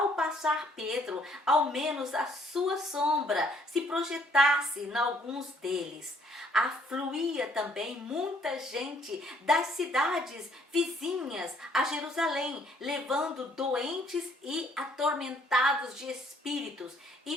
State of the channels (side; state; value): both; normal; correlation 0.64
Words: passar Pedro, ao menos a sua sombra se projetasse em alguns deles. Afluía também muita gente das cidades vizinhas a Jerusalém, levando doentes e atormentados de espíritos,